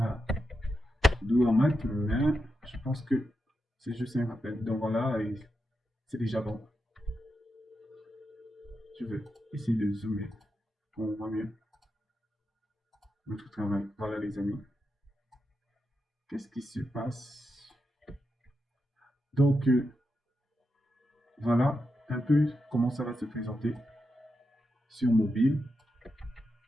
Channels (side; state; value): both; normal; correlation 0.87